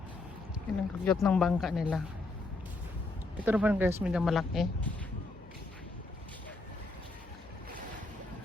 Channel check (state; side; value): quieter; right; 3.1 dB